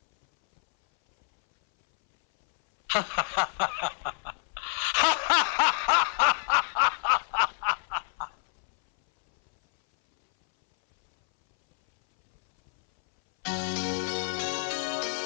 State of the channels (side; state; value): right; silent; 60 dB below the other